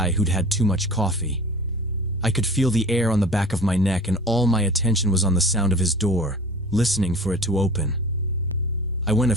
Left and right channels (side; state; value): both; normal; correlation 0.41